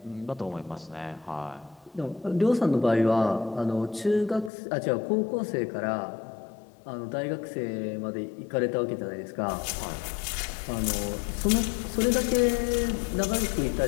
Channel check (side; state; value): right; drops out; at 4.5 s